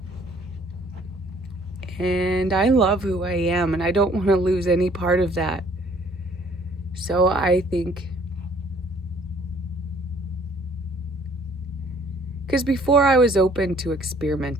And I love who I am, and I don't want to lose any part of that. So I think Because before I was open to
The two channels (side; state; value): both; normal; correlation 0.59